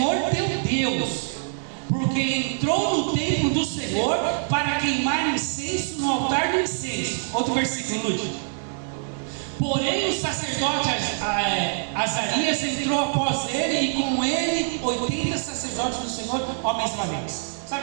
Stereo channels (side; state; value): left; silent; 62 dB below the other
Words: teu Deus, porque entrou no templo do Senhor para queimar incenso no altar do incenso. Outro versículo, Lúcio. Porém o sacerdote Azarias entrou após ele, e com ele 80 sacerdotes do Senhor, homens valentes. Sabe